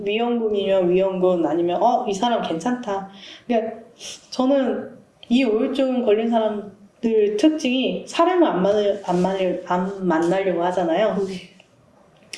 위험군 아니면 이 사람 괜찮다. 그러니까 저는 이 우울증 걸린 사람들 특징이 사람을 안 만나려고 하잖아요. 네.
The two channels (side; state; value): both; identical; correlation 1.00